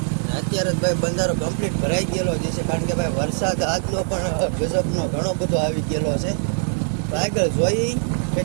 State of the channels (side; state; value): left; silent; digital silence